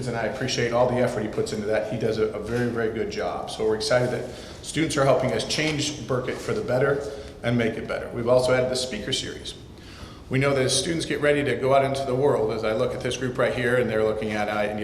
and I appreciate all the effort he puts into that. He does a very, very good job. So we're excited that students are helping us change Burket for the better and make it better. We've also added the speaker series. We know that as students get ready to go out into the world, as I look at this group right here, and they're looking at, I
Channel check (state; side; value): identical; both; correlation 1.00